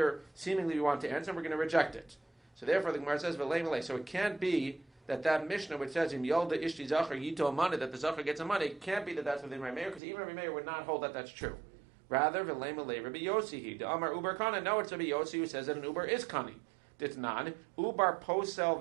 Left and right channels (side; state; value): left; drops out; at 10.0 s